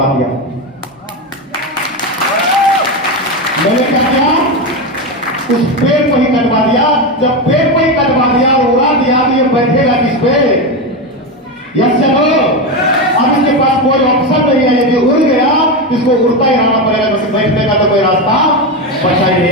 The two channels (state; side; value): normal; both; correlation 0.14